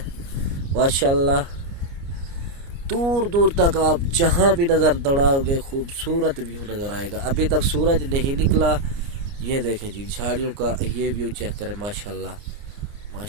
माशाल्लाह। दूर दूर तक आप जहाँ भी नज़र दौड़ाओगे खूबसूरत व्यू नज़र आएगा। अभी तक सूरज नहीं निकला। ये देखें जी, झाड़ियों का ये व्यू चेक करें, माशाल्लाह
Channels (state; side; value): late; left; 29 ms